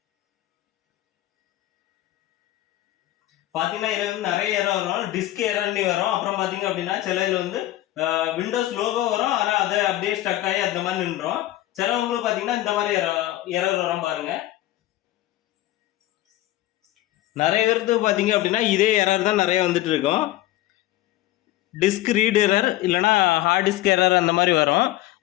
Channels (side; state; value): right; quieter; 15.5 dB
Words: பாத்தீங்கன்னா இதுல வந்து நிறைய எரர் வரும். டிஸ்க் எரர்னு வரும். அப்புறம் பாத்தீங்க அப்படின்னா சில இதுல வந்து விண்டோஸ் லோகோ வரும், ஆனா அதை அப்படியே ஸ்டக் ஆகி அந்த மாதிரி நின்றோம். சிலவங்களுக்கு பாத்தீங்கன்னா இந்த மாதிரி எரர் வரும் பாருங்க. நிறைய பேருக்கு பாத்தீங்க அப்படின்னா இதே எரர் தான் நிறைய வந்துட்டு இருக்கும். டிஸ்க் ரீட் எரர் இல்லைனா ஹார்ட் டிஸ்க் எரர் அந்த மாதிரி வரும்.